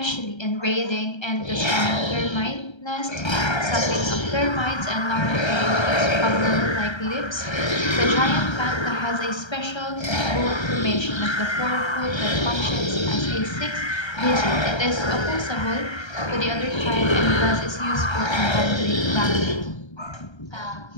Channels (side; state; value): right; late; 1.3 ms